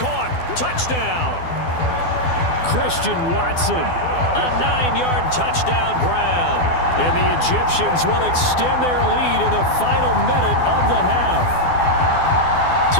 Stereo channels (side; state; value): right; late; 12 ms